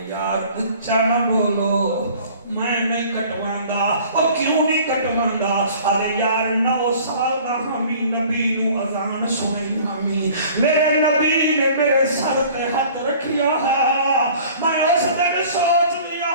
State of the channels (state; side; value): inverted; both; correlation -0.48